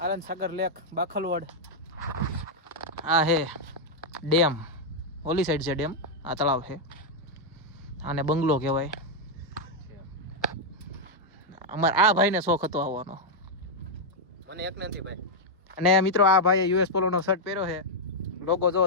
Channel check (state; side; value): normal; both; correlation -0.02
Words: આનંદ સાગર લેક બાખલવડ. આ હે ડેમ, ઓલી સાઈડ છે ડેમ, આ તળાવ છે. આને બંગલો કહેવાય. અમારે આ ભાઈને શોખ હતો આવવાનો. મને એક નથી ભાઈ. અને મિત્રો આ ભાઈએ યુએસ પોલોનો શર્ટ પહેર્યો છે. લોગો જો